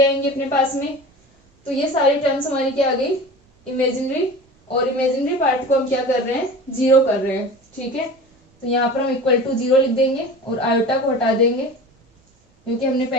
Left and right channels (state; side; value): normal; both; correlation 0.36